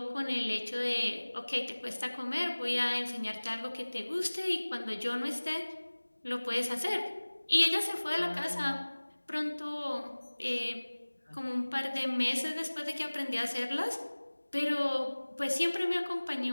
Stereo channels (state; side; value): inverted; both; correlation -1.00